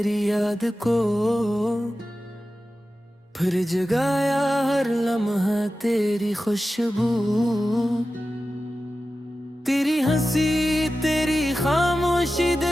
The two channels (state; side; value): normal; both; correlation 0.94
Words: याद को फिर जगाया, हर लम्हा तेरी खुशबू, तेरी हंसी तेरी खामोशी